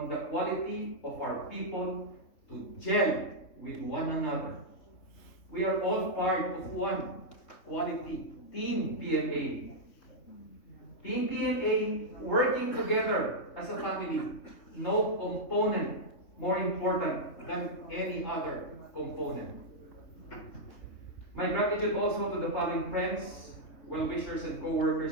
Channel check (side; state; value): right; late; 3.6 ms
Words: the quality of our people to gel with one another. We are all part of one quality Team PMA. Team PMA working together as a family. No component more important than any other component. My gratitude also to the following friends, well-wishers, and